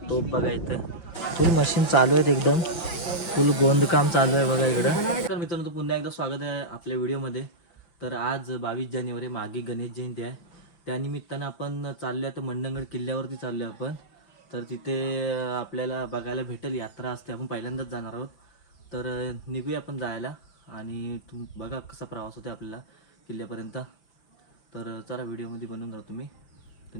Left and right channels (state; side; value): late; right; 5.8 ms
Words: तोफ बघा इथं फुल मशीन चालू आहेत, एकदम फुल गोंदकाम चालू आहे बघा इकडं. तर मित्रांनो पुन्हा एकदा स्वागत आहे आपल्या व्हिडिओमध्ये. तर आज 22 जानेवारी मागे गणेश जयंती आहे. त्यानिमित्तानं आपण चाललो आहे तर मंडणगड किल्ल्यावरती चाललो आहे आपण. तर तिथे आपल्याला बघायला भेटेल यात्रा असते, आपण पहिल्यांदाच जाणार आहोत. तर निघूया आपण जायला आणि बघा कसा प्रवास होते आपल्याला किल्ल्यापर्यंत. तर चला व्हिडिओमध्ये बनवून राहा तुम्ही. तर